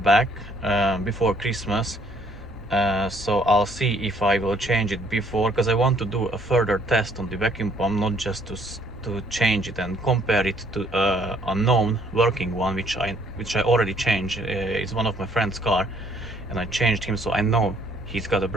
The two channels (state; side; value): normal; both; correlation 0.64